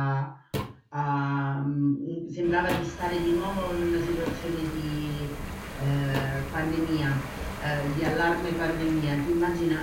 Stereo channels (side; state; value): both; identical; correlation 1.00